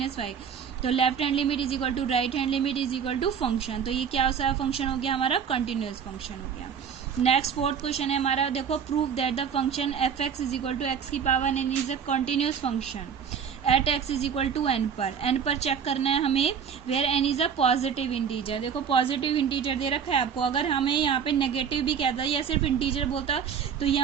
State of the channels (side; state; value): left; quieter; 7.4 dB